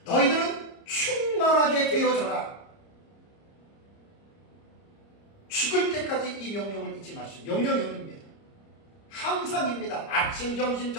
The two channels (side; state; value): right; late; 30 ms